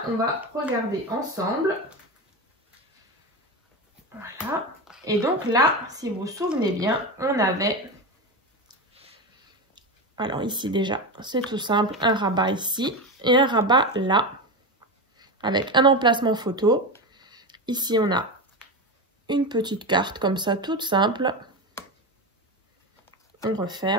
on va regarder ensemble. Voilà. Et donc là, si vous vous souvenez bien, on avait... Alors ici déjà, c'est tout simple. Un rabat ici et un rabat là. Avec un emplacement photo. Ici, on a une petite carte comme ça, toute simple. On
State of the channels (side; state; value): both; normal; correlation 0.19